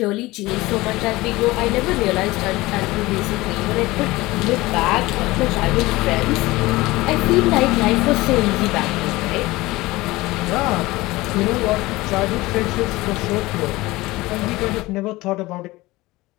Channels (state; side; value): quieter; right; 19.9 dB